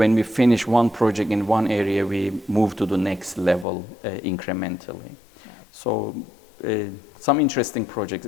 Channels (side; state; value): right; drops out; at 3.7 s